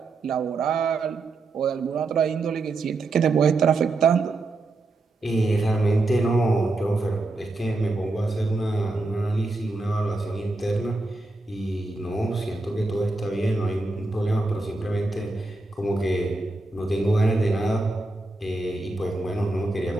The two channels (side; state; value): left; quieter; 3.2 dB